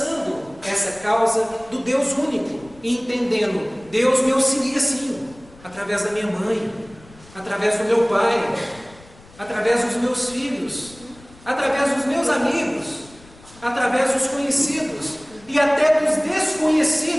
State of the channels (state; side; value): noise; left; rumble, 24 dB below the sound